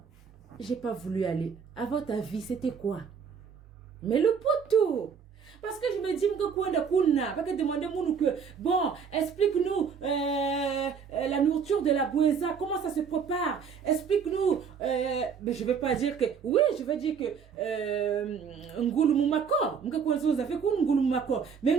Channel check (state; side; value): quieter; left; 6.5 dB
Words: j'ai pas voulu aller. À votre avis, c'était quoi? Mais le poteau. Parce que je me dis que quoi de parce que demander que bon, explique-nous la nourriture de la boueza, comment ça se prépare. Explique-nous. Mais je vais pas dire que oui, je vais dire que Ngouloumoumakor, mais